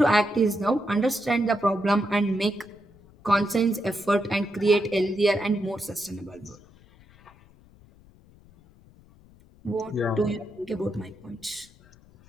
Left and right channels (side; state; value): left; noise; rumble, 26 dB below the sound